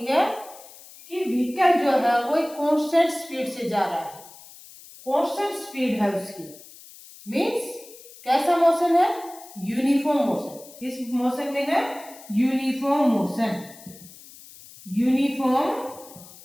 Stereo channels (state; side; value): noise; left; hiss, 20 dB below the sound